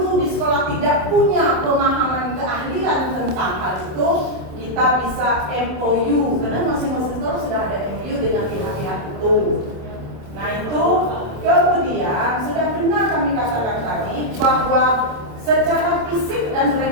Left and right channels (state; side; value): late; left; 27 ms